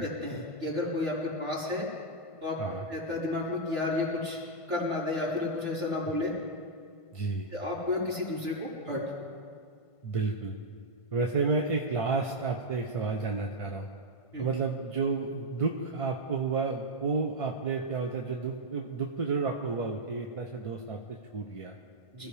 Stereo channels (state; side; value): late; right; 1.5 ms